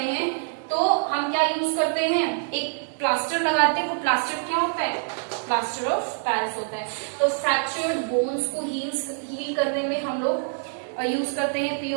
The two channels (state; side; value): silent; left; digital silence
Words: हैं तो हम क्या यूज करते हैं? एक प्लास्टर लगाते हैं। वो प्लास्टर क्या होता है? प्लास्टर ऑफ पेरिस होता है। तो फ्रैक्चर्ड बोन्स को हील करने में हम लोग यूज करते हैं